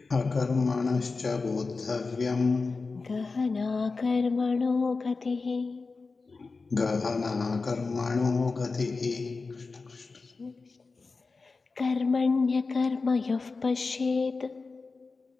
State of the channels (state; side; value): quieter; right; 4.1 dB